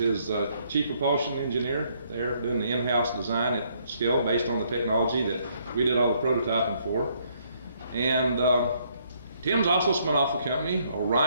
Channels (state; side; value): inverted; both; correlation -0.69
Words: chief propulsion engineer there, doing the in-house design at scale based on the technology that we did all the prototyping for. And Tim's also spun off a company,